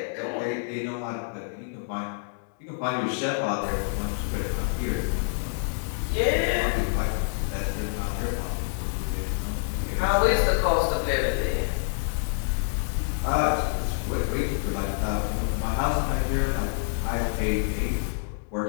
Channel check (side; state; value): right; silent; digital silence